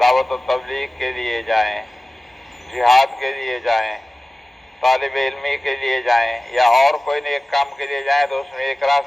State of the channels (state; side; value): normal; both; correlation 0.97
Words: دعوت و تبلیغ کے لیے جائیں، جہاد کے لیے جائیں، طالب علمی کے لیے جائیں، یا اور کوئی نیک کام کے لیے جائیں تو اس میں ایک